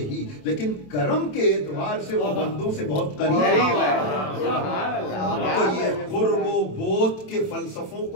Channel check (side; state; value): right; late; 27 ms